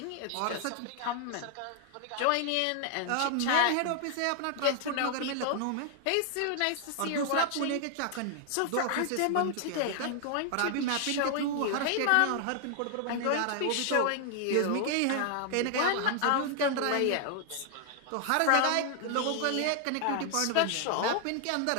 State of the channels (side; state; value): both; different; correlation 0.00